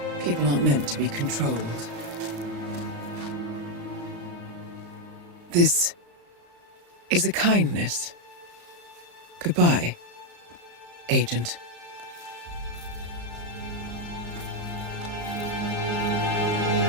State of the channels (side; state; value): left; late; 35 ms